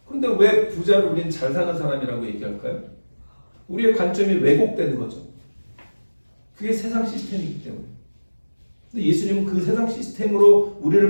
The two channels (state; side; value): inverted; both; correlation -1.00